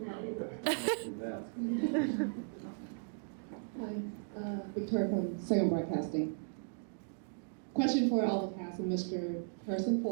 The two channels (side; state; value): left; silent; digital silence